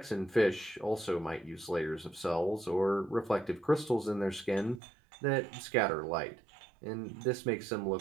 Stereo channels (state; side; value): drops out; left; at 4.8 s